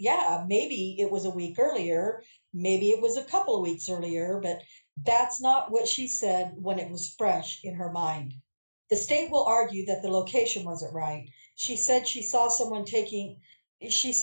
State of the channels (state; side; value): inverted; both; correlation -1.00